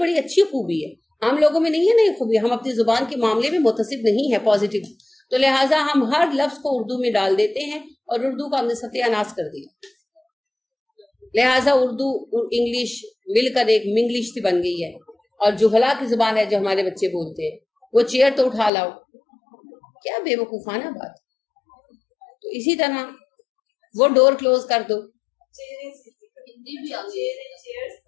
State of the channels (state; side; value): drops out; right; at 18.7 s